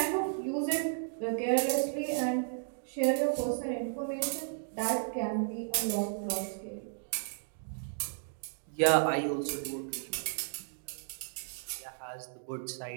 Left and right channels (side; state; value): left; silent; digital silence